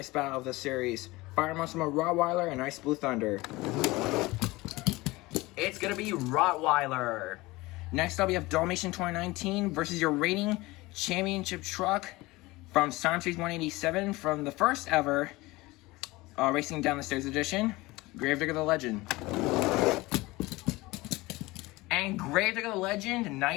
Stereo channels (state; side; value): quieter; right; 21.1 dB